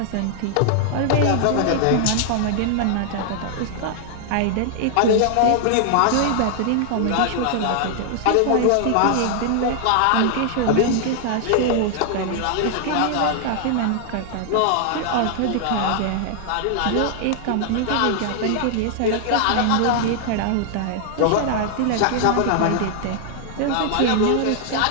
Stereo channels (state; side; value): different; both; correlation 0.00